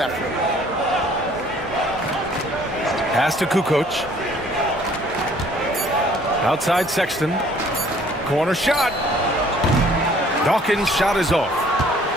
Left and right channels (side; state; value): both; normal; correlation 0.57